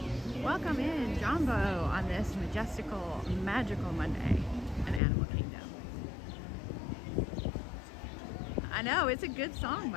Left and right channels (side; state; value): right; drops out; at 5.0 s